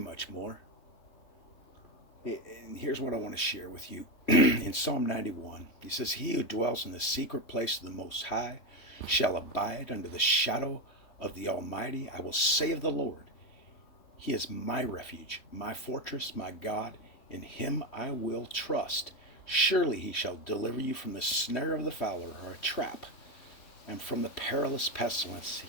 more. And here's what I want to share with you. In Psalm 91, he says, he who dwells in the secret place of the Most High shall abide under the shadow of the Almighty. I will say of the Lord, he is my refuge, my fortress, my God. In him I will trust. Surely he shall deliver you from the snare of the fowler, or a trap, and from the perilous pestilence.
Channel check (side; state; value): right; late; 3.4 ms